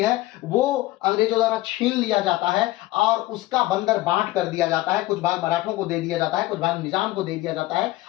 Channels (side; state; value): right; quieter; 17.6 dB